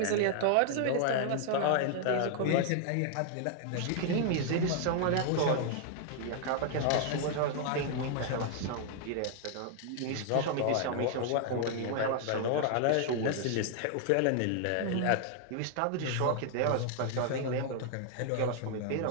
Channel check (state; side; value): different; both; correlation 0.00